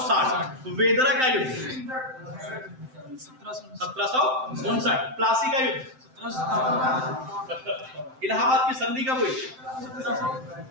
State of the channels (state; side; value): late; left; 7.7 ms